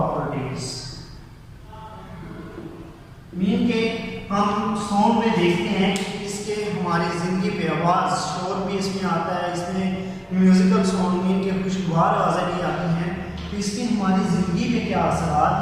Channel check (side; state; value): both; identical; correlation 1.00